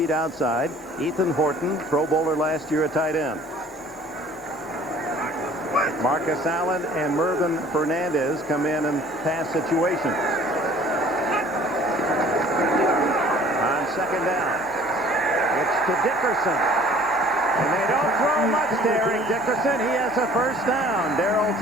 outside. Ethan Horton, Pro Bowler last year at tight end. Marcus Allen and Mervyn Fernandez come in pass situations. On second down, it's to Dickerson. And they don't throw much to Eric Dickerson. He has a first down. Darryl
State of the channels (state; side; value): normal; both; correlation 0.51